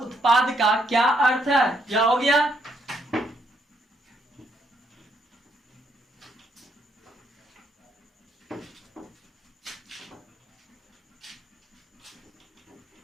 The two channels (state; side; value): normal; both; correlation 0.73